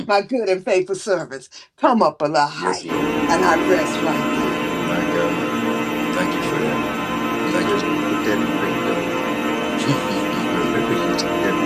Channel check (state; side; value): identical; both; correlation 1.00